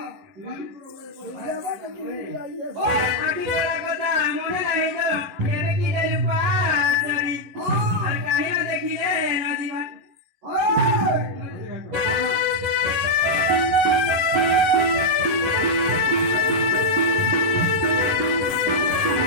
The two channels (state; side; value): late; left; 11 ms